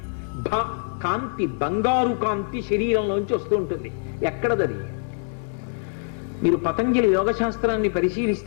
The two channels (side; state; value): right; silent; 61 dB below the other